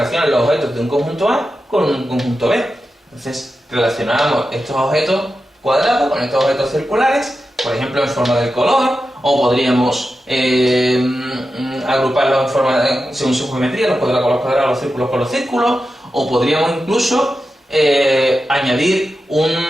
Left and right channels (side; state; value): both; normal; correlation 0.91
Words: los objetos de un conjunto A con un conjunto B. Entonces, relacionamos estos objetos cuadrados con estos objetos circulares, por ejemplo en forma del color, o podríamos agruparlos en forma según su geometría, los cuadrados con los cuadrados, los círculos con los círculos, o podríamos incluso añadir